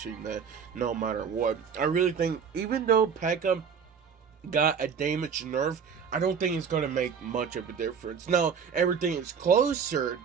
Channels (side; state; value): left; quieter; 6.6 dB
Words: that no matter what. I really think, even though P.E.K.K.A got a damage nerf, I don't think it's going to make much of a difference. Now, everything is closer,